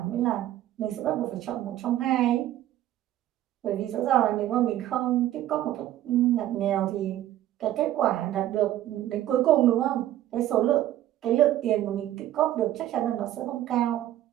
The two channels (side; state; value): left; quieter; 13.2 dB